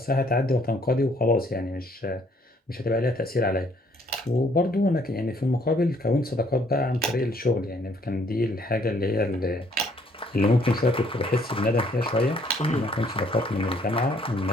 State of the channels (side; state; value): both; normal; correlation 0.64